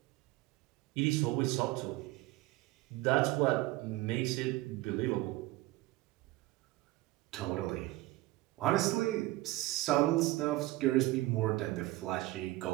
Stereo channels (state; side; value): quieter; left; 18.8 dB